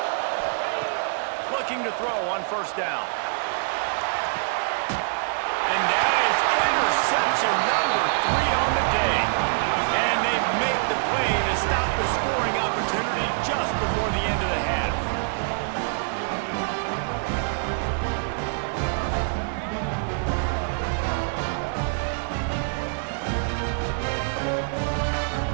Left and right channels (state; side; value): silent; left; digital silence